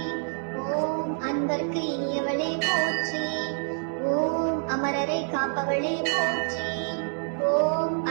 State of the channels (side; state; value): left; silent; 60 dB below the other